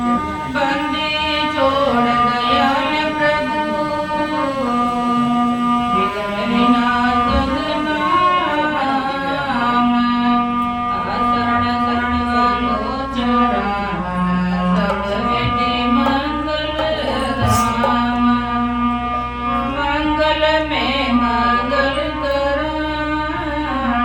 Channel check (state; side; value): identical; both; correlation 1.00